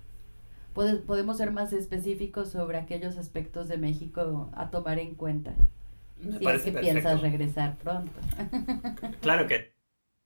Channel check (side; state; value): both; inverted; correlation -1.00